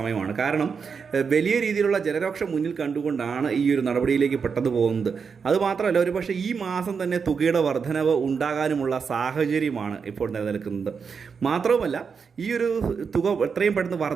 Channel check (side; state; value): left; quieter; 5.9 dB